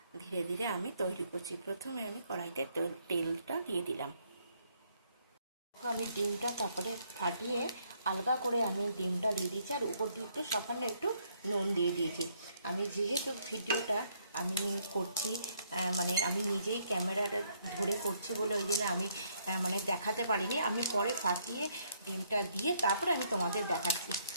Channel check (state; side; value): inverted; both; correlation -0.70